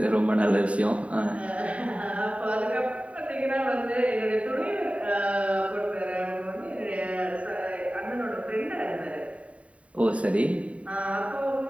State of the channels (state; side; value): late; left; 0.065 ms